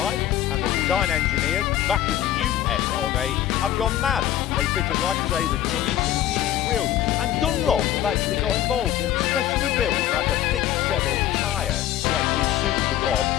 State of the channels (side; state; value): right; quieter; 12.3 dB